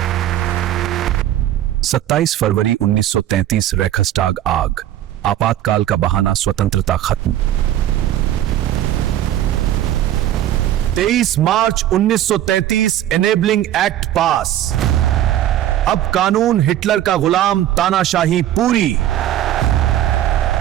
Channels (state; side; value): quieter; left; 12.3 dB